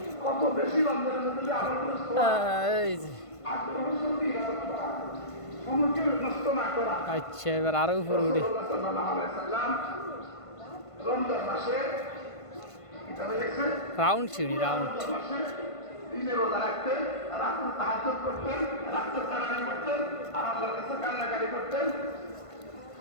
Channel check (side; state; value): right; late; 1.5 ms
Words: কত বেশি রমজানের মধ্যে যে আমলগুলো সময়কে নষ্ট না করা। আচ্ছা, এবার আরো উপরে উঠি। রমজান মাসে রাউন্ড সিঁড়ি, রাউন্ড। দিনে রোজা রাখতেন, রাত্রে তাহাজ্জুদ করতেন, রাত্রে তারাবি করতেন, আর আল্লাহর কাছে কান্নাকাটি করতেন।